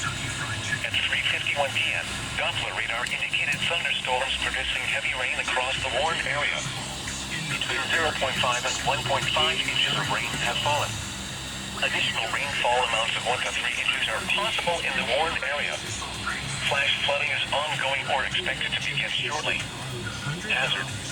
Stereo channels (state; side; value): identical; both; correlation 1.00